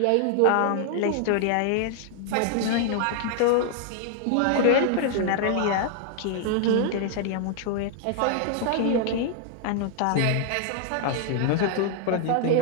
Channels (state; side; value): different; both; correlation -0.01